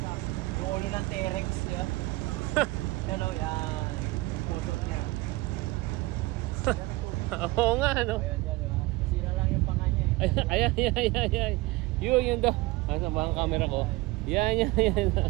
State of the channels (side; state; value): left; quieter; 21.1 dB